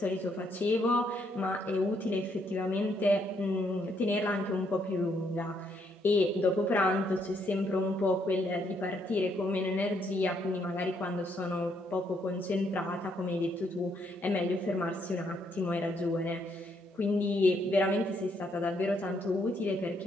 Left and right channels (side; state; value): both; normal; correlation 0.73